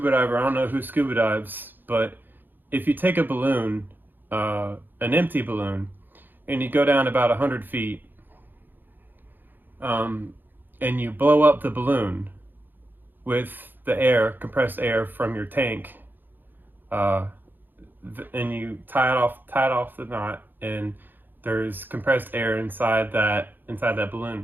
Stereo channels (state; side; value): late; left; 0.091 ms